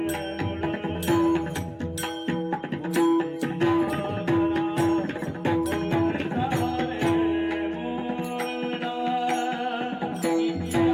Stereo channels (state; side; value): identical; both; correlation 1.00